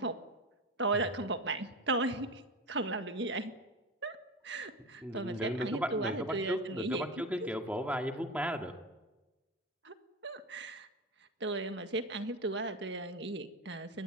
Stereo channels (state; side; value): normal; both; correlation 0.24